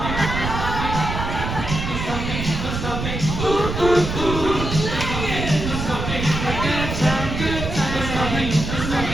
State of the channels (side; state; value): right; noise; rumble, 4 dB below the sound